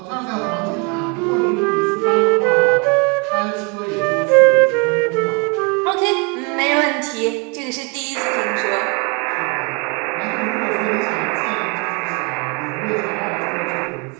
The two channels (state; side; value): quieter; left; 32.5 dB